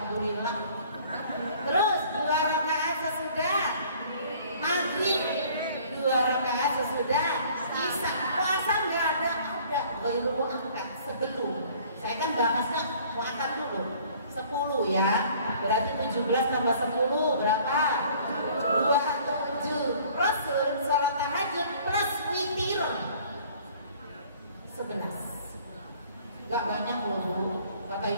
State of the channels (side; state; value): both; inverted; correlation -0.54